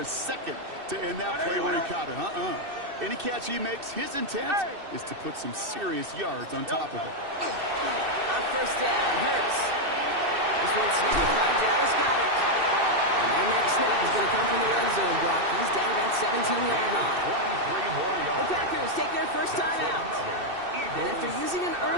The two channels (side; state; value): left; late; 2.6 ms